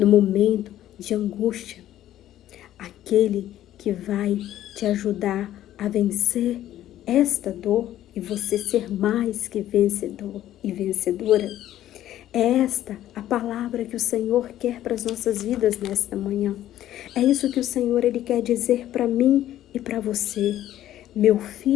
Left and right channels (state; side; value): quieter; right; 12.8 dB